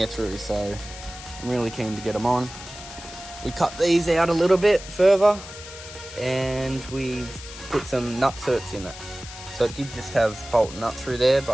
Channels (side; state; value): left; noise; hiss, 14 dB below the sound